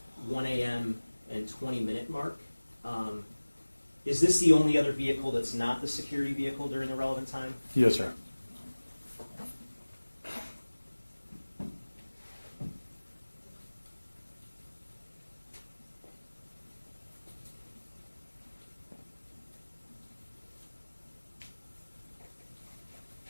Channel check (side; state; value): both; inverted; correlation -1.00